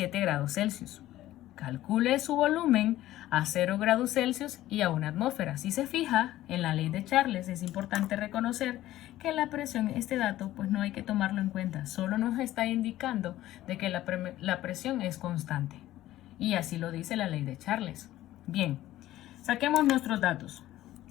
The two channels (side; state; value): right; quieter; 14.7 dB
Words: grados Celsius. Calcule su volumen a 0 grados Celsius y a una atmósfera. Si se fija, en la ley de Charles es importante reconocer que la presión, este dato, pues no hay que tomarlo en cuenta. Solo nos está indicando de que la presión es constante. Y así lo dice la ley de Charles. Bien, saquemos nuestros datos.